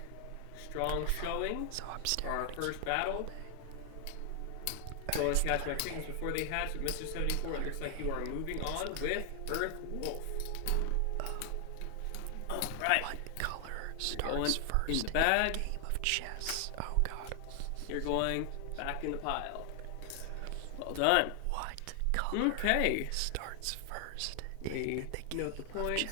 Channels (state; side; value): different; both; correlation 0.00